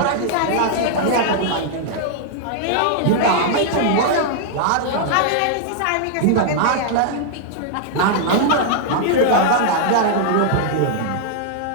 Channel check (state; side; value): different; both; correlation -0.01